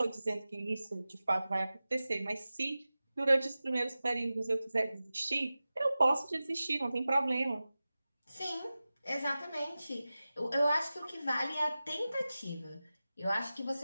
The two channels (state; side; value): inverted; both; correlation -0.96